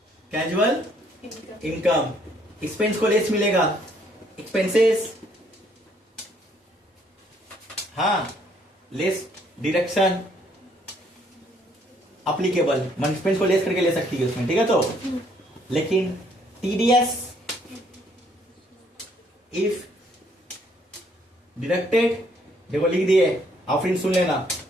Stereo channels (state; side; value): normal; both; correlation 0.66